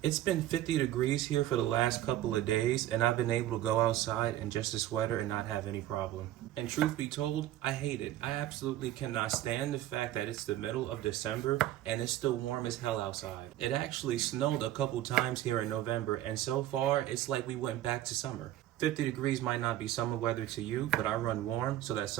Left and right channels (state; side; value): quieter; left; 13.6 dB